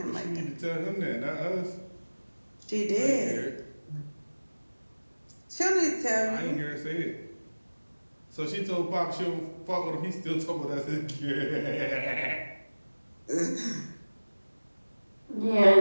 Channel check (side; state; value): both; inverted; correlation -1.00